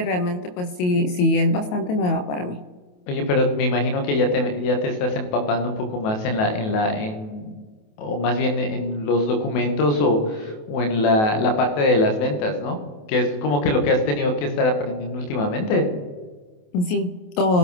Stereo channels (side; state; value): right; late; 28 ms